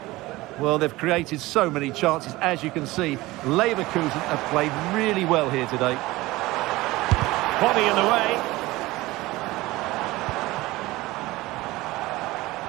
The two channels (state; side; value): quieter; left; 19.4 dB